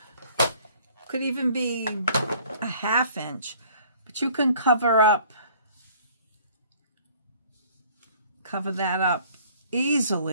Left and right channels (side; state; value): both; inverted; correlation -0.55